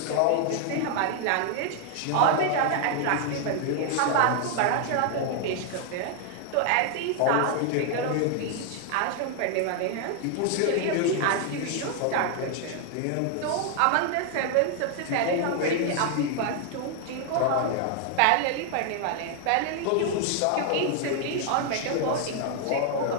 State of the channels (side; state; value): both; different; correlation 0.00